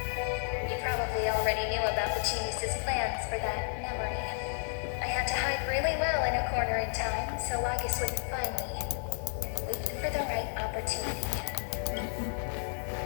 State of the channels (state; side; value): silent; right; 56 dB below the other